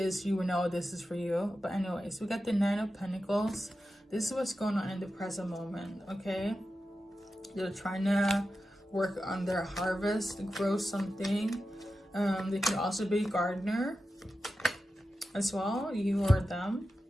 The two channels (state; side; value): normal; both; correlation 0.92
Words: you will know this is for you. But anyways, we got the Nine of Pentacles. This is what's going on in the present moment, okay? They're trying to work on their harvest, grow something. They could also be a gardener as well, you or them.